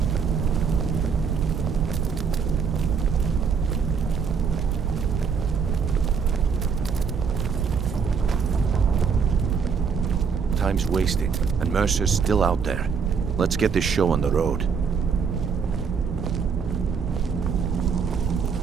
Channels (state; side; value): quieter; left; 6.0 dB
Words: Time's wasting, and Mercer's still out there. Let's get this show on the road.